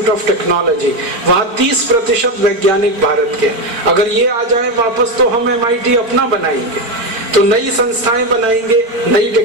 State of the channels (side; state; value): left; late; 4.4 ms